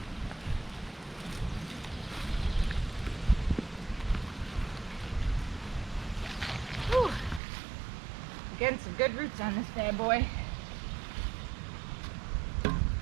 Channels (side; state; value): left; drops out; at 7.4 s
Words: Getting some good roots on this bad boy.